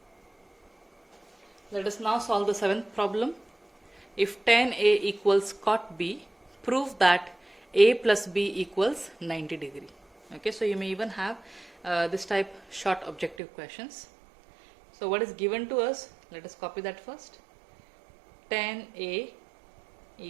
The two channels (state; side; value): drops out; left; at 13.4 s